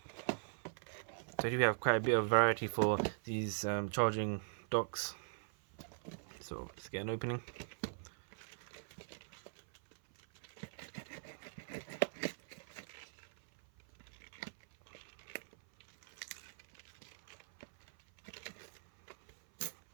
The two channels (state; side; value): silent; left; 50 dB below the other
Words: So here we have quite a bit of variety for these charging docks. So let's get an opening.